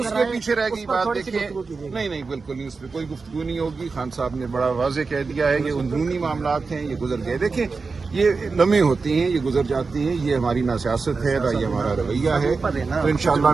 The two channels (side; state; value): left; quieter; 4.4 dB